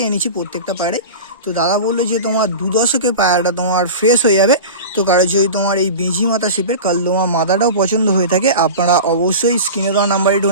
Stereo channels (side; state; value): both; inverted; correlation -0.31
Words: এনেছি প্রত্যেকটা পায়রাই। তো দাদা বললো যে তোমার 2 দশকে পায়রাটা তোমার ফ্রেশ হয়ে যাবে। তো কারো যদি তোমার এই বেঁজি মাথা শেপের কালদমা মাদাটাও পছন্দ হয়ে থাকে, আপনারা অবশ্যই স্ক্রিনে দেওয়া নাম্বারে